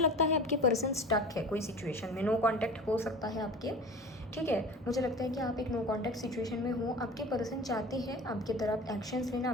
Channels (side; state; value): both; normal; correlation 0.36